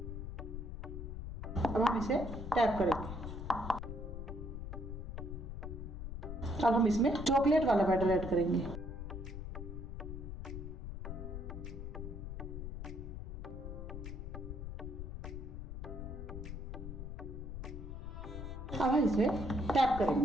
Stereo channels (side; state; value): left; noise; rumble, 7 dB below the sound